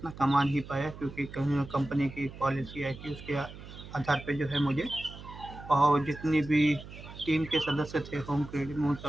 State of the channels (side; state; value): right; noise; hum, 15 dB below the sound